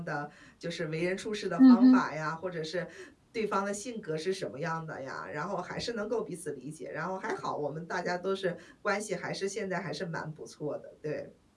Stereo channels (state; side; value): identical; both; correlation 1.00